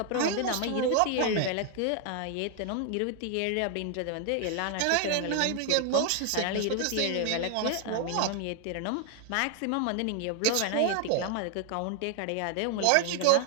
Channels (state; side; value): different; both; correlation 0.00